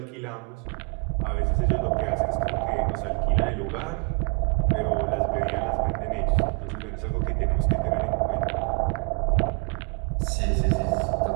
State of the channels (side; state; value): left; quieter; 34.1 dB